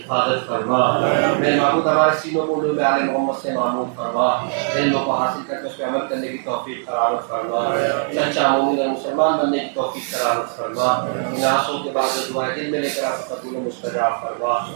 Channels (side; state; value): left; silent; digital silence